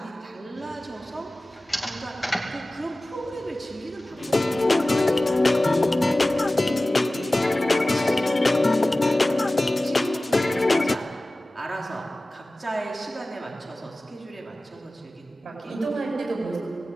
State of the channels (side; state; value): both; normal; correlation 0.97